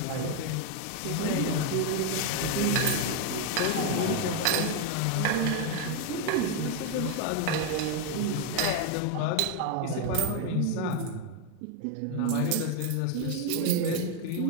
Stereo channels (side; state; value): both; different; correlation 0.01